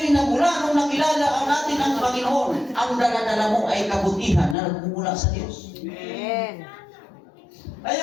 nagmula, nung nakilala ang natin ang Panginoon, ang dala-dala mo ay kabutihan na nagmumula sa Diyos. Amen. Kaya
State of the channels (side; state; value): right; drops out; at 4.5 s